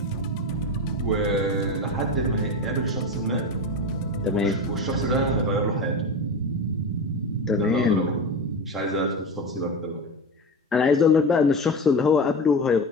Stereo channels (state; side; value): normal; both; correlation 0.23